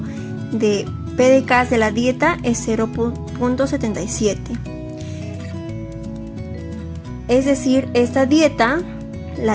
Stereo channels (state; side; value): identical; both; correlation 1.00